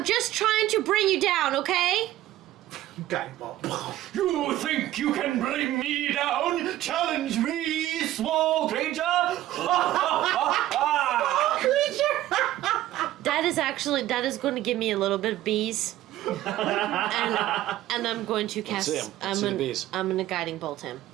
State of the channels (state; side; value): quieter; left; 14.5 dB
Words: just trying to bring you down, okay? Guiding bolt. You think you can bring me down? Challenge me, small creature! That is going to give me a little bit of bees. and I'm going to cast. Let's see the bees. I'm gonna guiding bolt him.